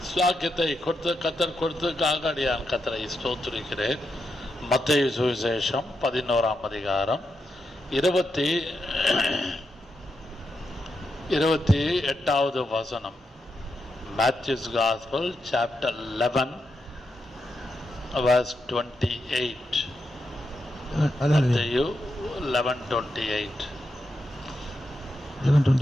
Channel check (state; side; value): normal; both; correlation 0.85